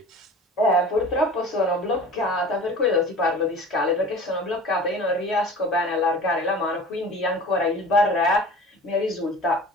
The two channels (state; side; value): normal; both; correlation 0.40